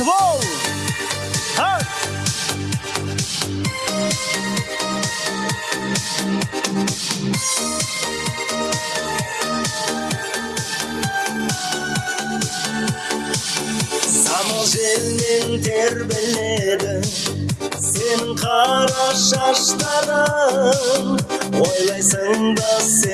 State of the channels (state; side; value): identical; both; correlation 1.00